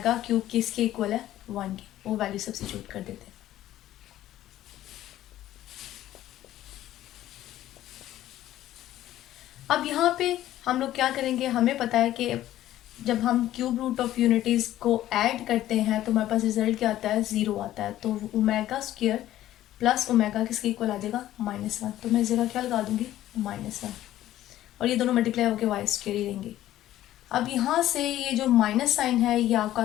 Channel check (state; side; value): quieter; right; 13.6 dB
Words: क्यूब किसके इक्वल है, 1 के, वो वैल्यू सब्स्टिट्यूट कर देते हैं। अब यहाँ पे हम लोग क्या करेंगे, हमें पता है कि जब हम क्यूब रूट ऑफ यूनिटीज़ को ऐड करते हैं तो हमारे पास रिजल्ट क्या आता है, 0 आता है। तो ओमेगा स्क्वायर प्लस ओमेगा किसके इक्वल आ जाएगा, -1, तो मैं इस जगह क्या लगा दूंगी, -1, और ये दोनों मल्टीप्लाई होकर वाई स्क्वायर ही रहेंगे। अब यहाँ से ये जो माइनस साइन है ये